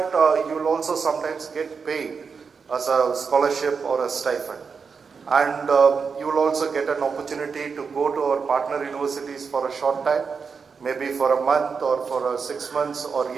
you will also sometimes get paid as a scholarship or a stipend. And you will also get an opportunity to go to our partner universities for a short time, maybe for a month or for 6 months or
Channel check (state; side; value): quieter; left; 5.5 dB